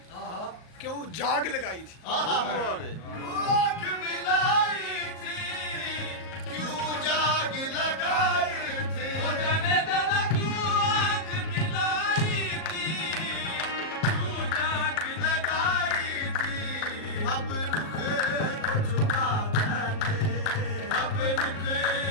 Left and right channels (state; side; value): late; right; 38 ms